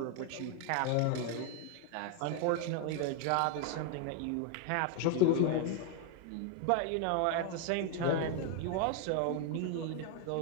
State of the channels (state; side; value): different; both; correlation 0.01